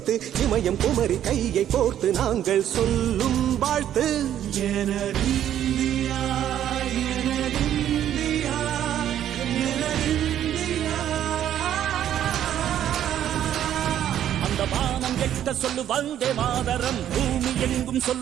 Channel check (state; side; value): quieter; left; 10.8 dB